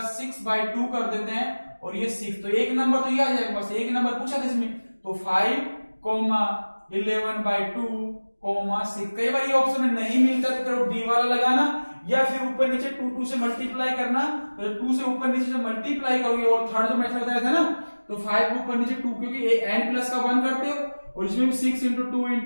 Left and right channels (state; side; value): inverted; both; correlation -1.00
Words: 6 by 2 कर देते हैं, और ये 6, तो एक नंबर तो ये आ जाएगा, बस एक नंबर पूछा था इसमें। तो 5 11 by 2 6। कई बार ये ऑप्शन में नहीं मिलता तो डी वाला लगाना, या फिर ऊपर नीचे 2 से मल्टीप्लाई करना, तो 2 से ऊपर नीचे से मल्टीप्लाई करोगे। और थर्ड जो मेथड बताया था ना, तो 5 के ऊपर नीचे 2, क्योंकि n प्लस का 1 करते हो और इसमें 6 into